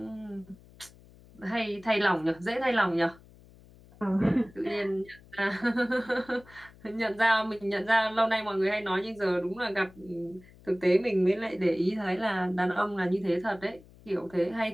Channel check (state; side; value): noise; left; hum, 24 dB below the sound